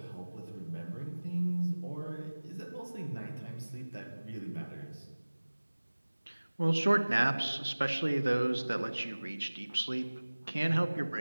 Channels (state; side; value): inverted; both; correlation -1.00